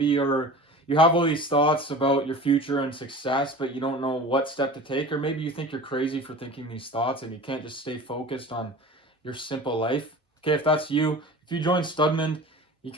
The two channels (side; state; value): both; normal; correlation 0.38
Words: you have all these thoughts about your future and success, but you don't know what step to take, or maybe you think you're crazy for thinking these thoughts and you can't just stay focused on your simple life. Okay, if that's you, if you join Studman, you